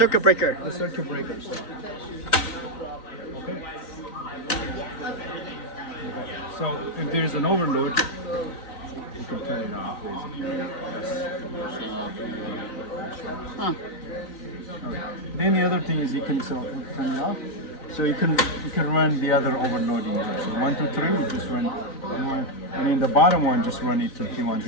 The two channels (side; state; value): right; late; 3.9 ms